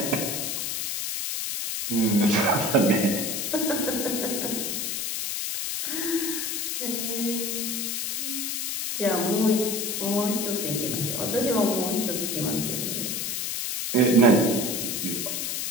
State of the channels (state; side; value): noise; left; hiss, 2 dB below the sound